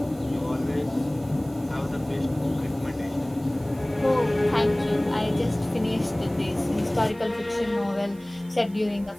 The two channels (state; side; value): noise; right; hiss, 26 dB below the sound